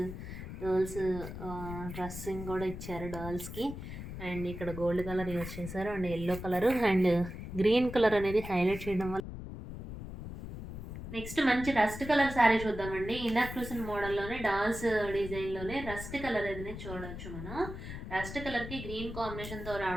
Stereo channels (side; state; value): left; noise; rumble, 9 dB below the sound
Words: డ్రెస్సింగ్ కూడా ఇచ్చారు డర్ల్స్కి. అండ్ ఇక్కడ గోల్డ్ కలర్ యూజ్ చేశారు and yellow colour and green colour అనేది హైలైట్ చేయడం వల్ల. నెక్స్ట్ మంచి రస్ట్ కలర్ శారీ చూద్దామండి. ఇందాక చూసిన మోడల్లోనే డాల్స్ డిజైన్లోనే రస్ట్ కలర్ అనేది చూడవచ్చు మనం. రస్ట్ కలర్కి గ్రీన్ కాంబినేషన్తో